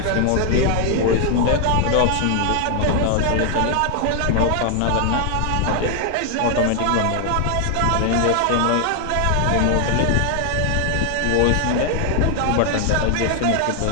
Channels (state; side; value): different; both; correlation 0.00